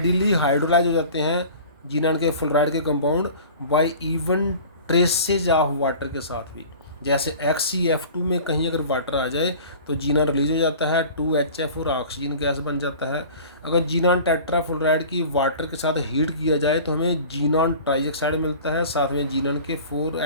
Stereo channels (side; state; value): both; inverted; correlation -0.42